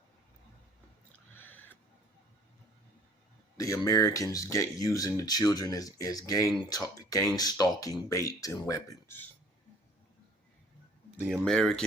the Americans get using the children as gang stalking bait and weapons. The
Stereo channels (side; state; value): both; normal; correlation 0.54